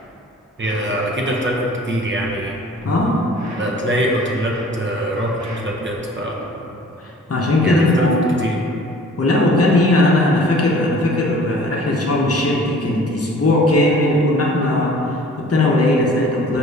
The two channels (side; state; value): both; normal; correlation 0.49